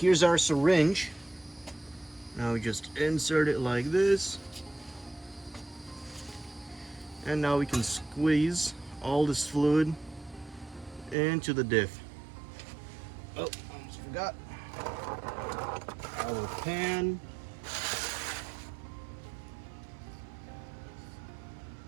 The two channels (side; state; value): left; drops out; at 11.2 s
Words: our syringe. Now we just insert it like this. And now we can squeeze all this fluid into the diff. Oh, almost forgot. Our pan.